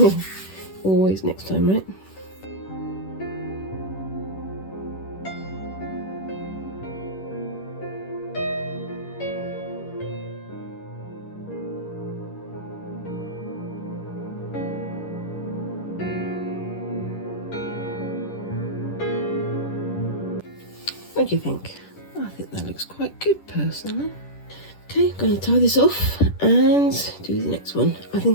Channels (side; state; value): right; late; 10 ms